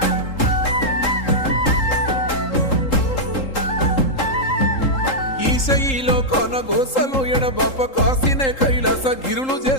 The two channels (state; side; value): late; right; 3.8 ms